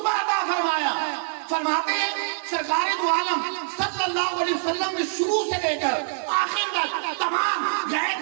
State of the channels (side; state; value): left; silent; digital silence